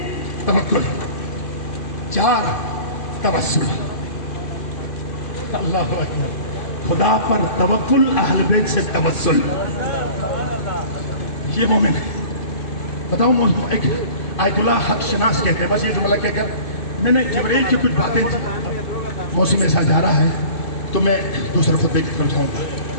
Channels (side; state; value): right; late; 2.5 ms